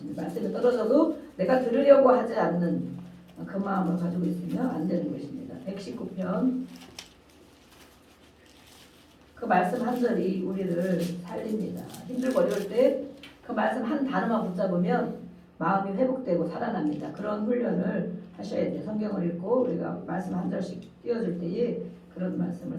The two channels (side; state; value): both; identical; correlation 1.00